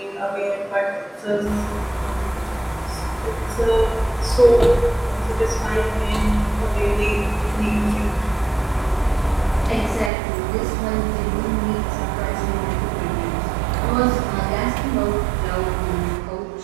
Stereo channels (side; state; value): left; drops out; at 10.1 s